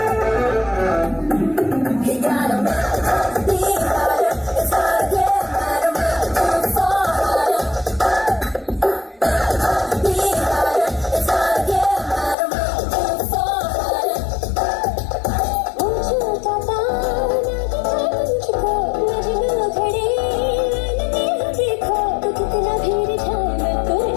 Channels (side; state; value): right; drops out; at 12.4 s